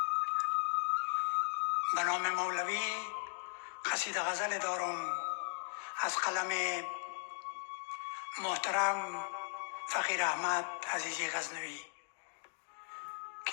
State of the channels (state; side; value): silent; right; digital silence